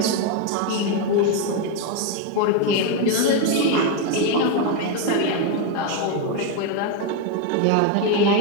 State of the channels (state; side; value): different; both; correlation 0.02